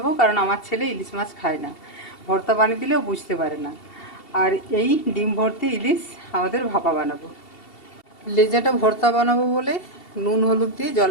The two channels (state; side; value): late; right; 2.7 ms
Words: কারণ আমার ছেলে ইলিশ মাছ খায় না। ভর্তা বানিয়ে দিলেও বুঝতে পারে না। আর এই ডিম ভর্তি ইলিশ আমাদের ভাপা বানাবো। লেজাটা ভর্তা বানাবো বলে নুন হলুদ দিয়ে